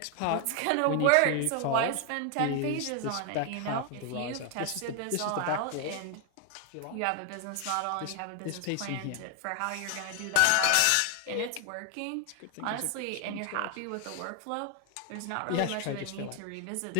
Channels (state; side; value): different; both; correlation 0.00